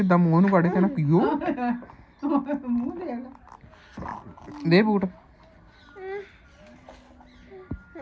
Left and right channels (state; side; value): identical; both; correlation 1.00